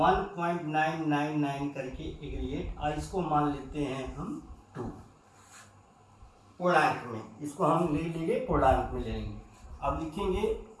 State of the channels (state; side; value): identical; both; correlation 1.00